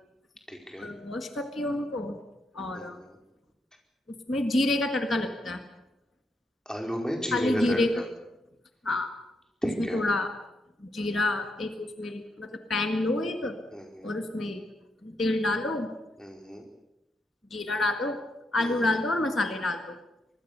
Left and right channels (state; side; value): normal; both; correlation 0.80